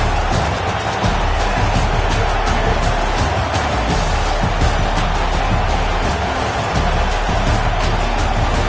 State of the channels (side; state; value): both; identical; correlation 1.00